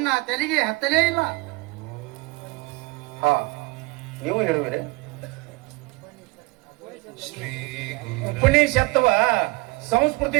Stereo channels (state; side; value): quieter; left; 24.4 dB